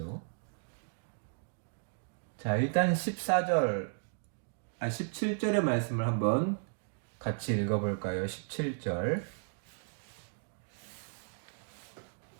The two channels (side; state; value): left; silent; digital silence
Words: 자, 일단 17절의 말씀을 한번 같이 읽어볼까요? 17절.